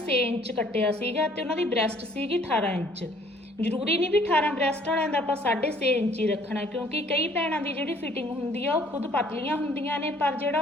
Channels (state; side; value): normal; both; correlation 0.59